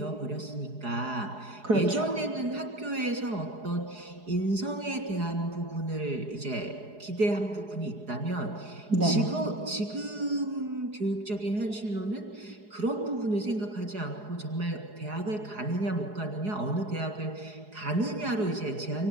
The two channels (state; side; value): late; left; 4.8 ms